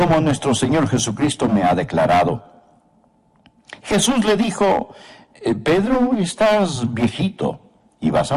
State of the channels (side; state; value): both; identical; correlation 1.00